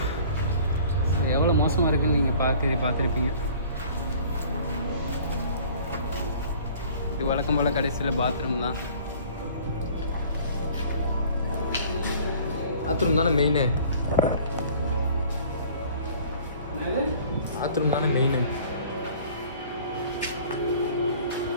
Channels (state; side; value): inverted; both; correlation -0.50